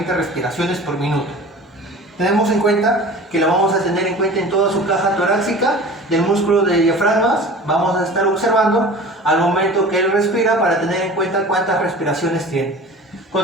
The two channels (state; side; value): normal; both; correlation 0.40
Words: respiraciones por minuto. Tenemos en cuenta que lo vamos a tener en cuenta en toda su caja torácica del músculo de diafragmas. Vamos a estar observando al momento que él respira para tener en cuenta cuántas respiraciones tiene.